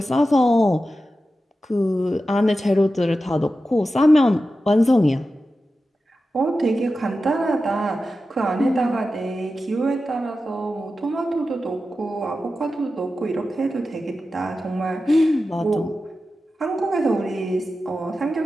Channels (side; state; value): both; normal; correlation 0.92